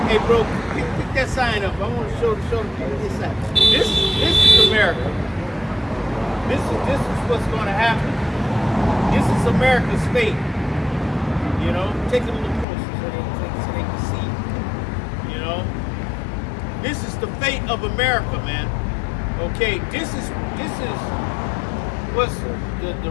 hey, bro, pick that sign up. I want to show the people this sign. This is America. This is what's going to happen. This is America's fate. You know, take it a little closer so they can see. You know. This is the fate of America, man. Okay, this is what's the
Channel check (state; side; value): drops out; right; at 12.7 s